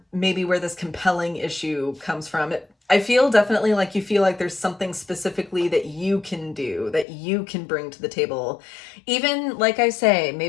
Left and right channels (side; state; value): right; drops out; at 7.1 s